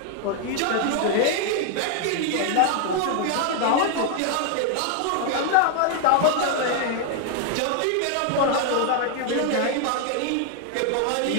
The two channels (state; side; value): different; both; correlation 0.00